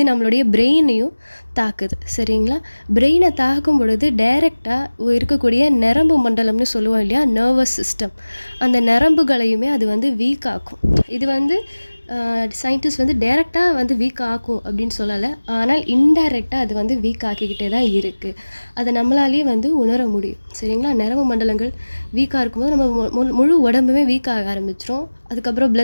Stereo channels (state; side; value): inverted; both; correlation -1.00